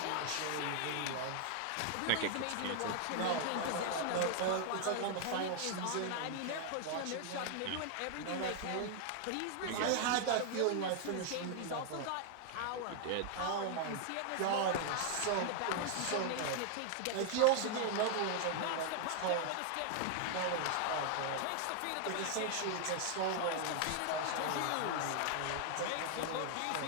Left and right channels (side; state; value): both; different; correlation 0.00